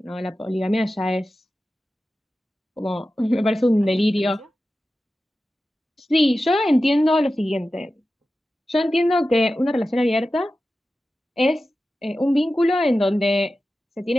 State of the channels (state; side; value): normal; both; correlation 0.94